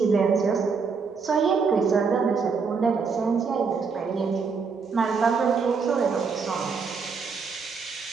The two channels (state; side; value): quieter; left; 5.2 dB